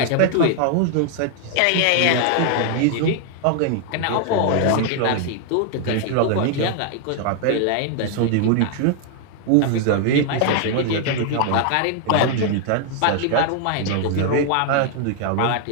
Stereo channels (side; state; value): both; different; correlation 0.00